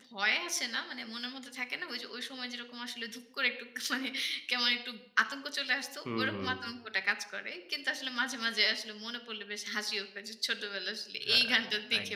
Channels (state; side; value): identical; both; correlation 1.00